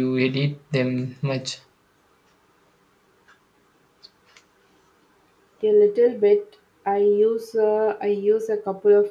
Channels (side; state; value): both; identical; correlation 1.00